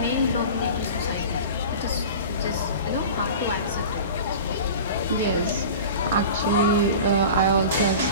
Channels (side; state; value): both; inverted; correlation -0.35